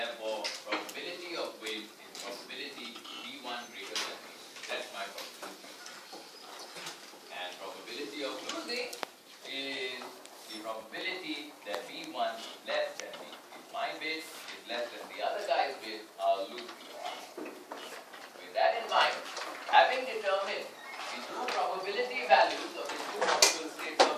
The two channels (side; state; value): both; identical; correlation 1.00